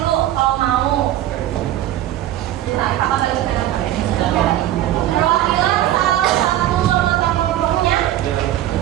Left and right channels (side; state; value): left; quieter; 13.3 dB